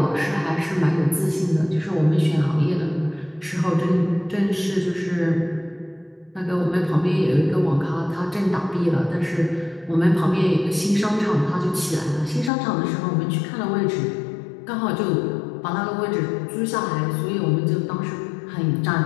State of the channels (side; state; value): right; drops out; at 12.5 s